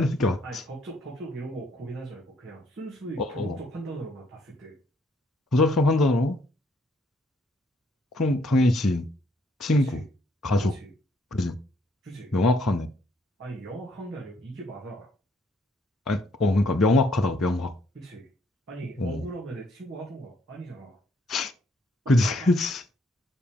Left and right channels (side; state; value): both; normal; correlation 0.69